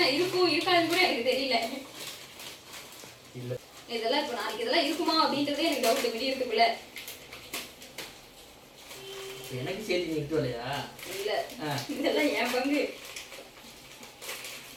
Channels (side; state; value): both; identical; correlation 1.00